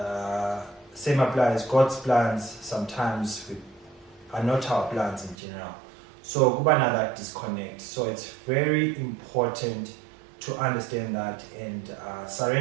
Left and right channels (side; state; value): left; drops out; at 5.4 s